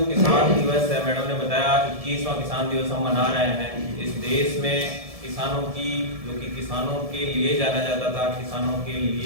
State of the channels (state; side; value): late; left; 1.7 ms